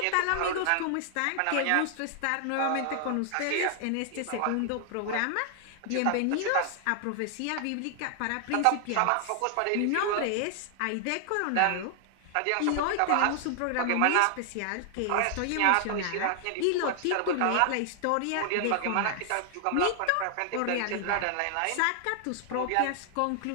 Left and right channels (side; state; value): both; different; correlation 0.00